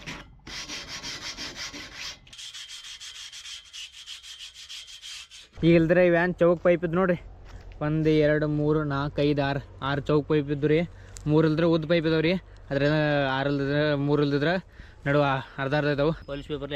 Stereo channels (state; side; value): identical; both; correlation 1.00